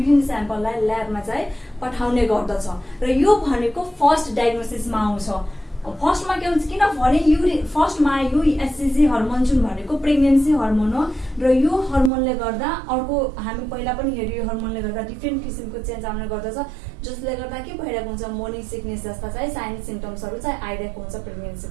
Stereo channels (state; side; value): drops out; left; at 12.1 s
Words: स्याम्पललाई ल्याबमा चाहिँ पठाउने गर्दछ र यो भनेको फर्स्ट डायग्नोसिसमा आउँछ। फर्स्टमा के हुन्छ किनभने फर्स्टमा यो एचसीजी हर्मोन जुन भनेको प्रेग्नेन्सी हर्मोन हो र यो हर्मोनले गर्दा अर्को हामी पहिला पनि हेऱ्यो यो हर्मोनले गर्दा डिफ्रेन्ट किसिमको चेन्ज आउने गर्दछ जसले गर्दा के भइरहेको हुन्छ मोर्निङ सिकनेस जस्ता चाहिँ साइन सिम्टम्सहरू चाहिँ आइरहेको हुन्छ